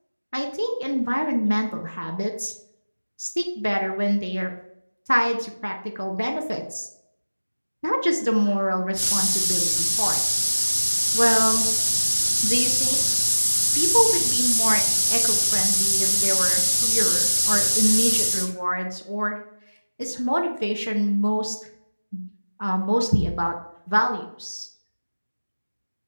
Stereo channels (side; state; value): both; inverted; correlation -1.00